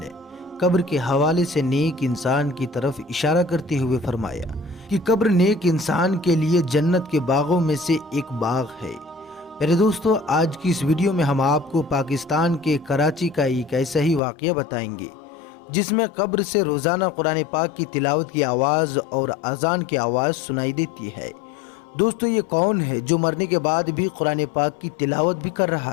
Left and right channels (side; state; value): right; drops out; at 14.2 s